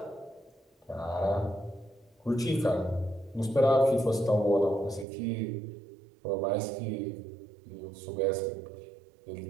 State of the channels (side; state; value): left; drops out; at 5.1 s